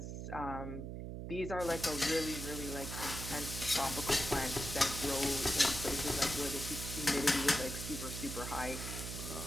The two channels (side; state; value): right; noise; hum, 6 dB below the sound